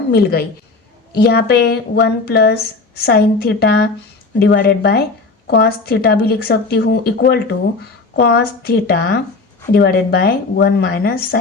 मिल गई। यहाँ पे 1 plus sine theta divided by cos theta भी लिख सकती हूँ equal to cos theta divided by 1 minus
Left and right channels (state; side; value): quieter; right; 3.8 dB